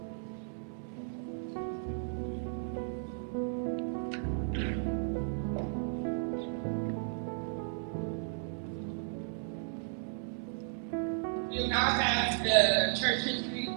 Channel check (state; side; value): silent; left; 55 dB below the other